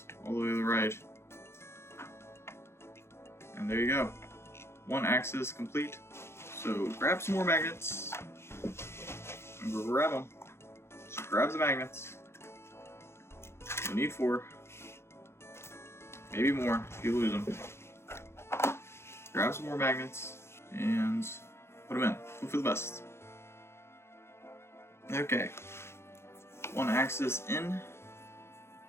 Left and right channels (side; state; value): right; late; 0.12 ms